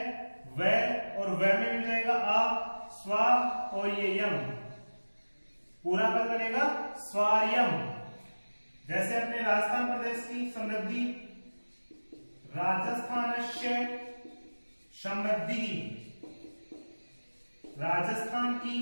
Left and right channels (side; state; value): both; inverted; correlation -1.00